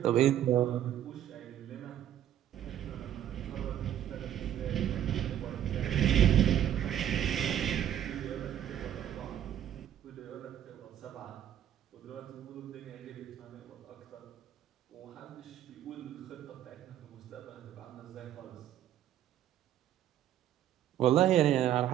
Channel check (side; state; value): left; quieter; 11.1 dB